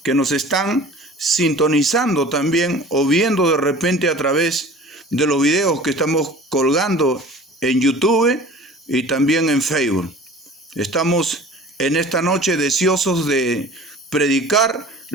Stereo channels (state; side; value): normal; both; correlation 0.43